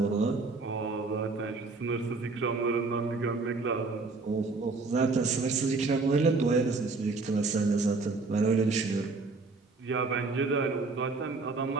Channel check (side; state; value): left; quieter; 3.9 dB